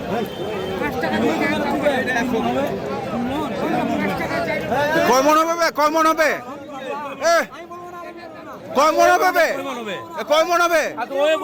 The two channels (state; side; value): identical; both; correlation 1.00